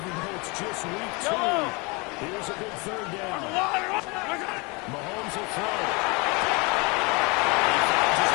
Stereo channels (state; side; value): quieter; right; 28.3 dB